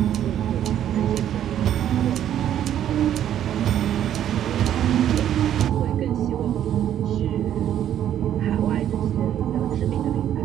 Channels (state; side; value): quieter; left; 10.7 dB